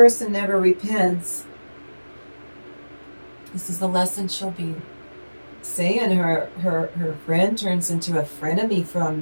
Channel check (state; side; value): inverted; both; correlation -1.00